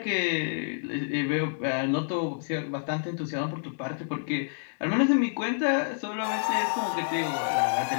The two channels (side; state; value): right; silent; digital silence